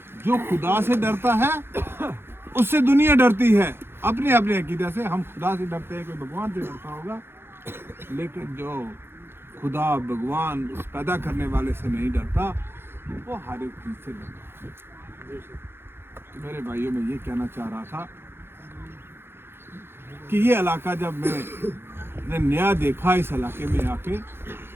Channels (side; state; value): left; late; 0.11 ms